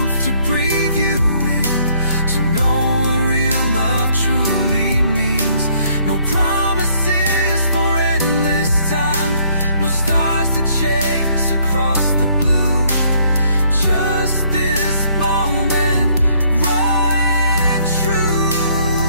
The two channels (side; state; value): both; inverted; correlation -0.65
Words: to breathe you in, to know what real love truly means. No promises for endless time, no stars to chase across the blue, just this moment, right and true.